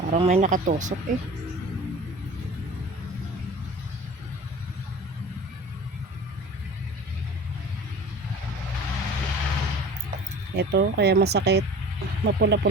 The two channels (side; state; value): both; normal; correlation 0.40